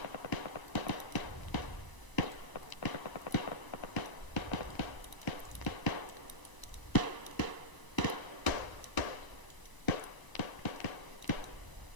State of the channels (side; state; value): right; late; 1.0 ms